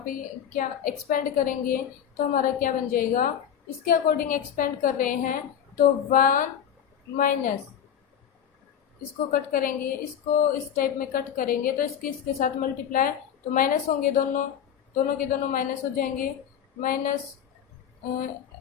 पे क्या एक्सपेंड करेंगे तो हमारा क्या बन जाएगा, इसके अकॉर्डिंग एक्सपेंड कर रहे हैं तो 1 माइनस, इसको कट करेंगे, इसको इस टाइप में कट करेंगे तो इसके साथ मल्टीप्लाई, तो माइनस होंगे दोनों के दोनों माइनस हो जाएंगे, माइनस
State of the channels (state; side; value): quieter; right; 9.0 dB